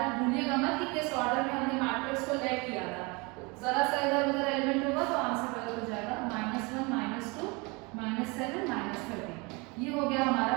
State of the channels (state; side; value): quieter; left; 27.7 dB